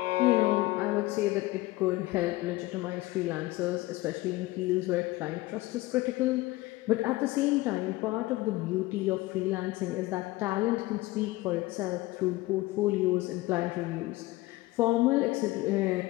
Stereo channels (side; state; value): right; quieter; 19.2 dB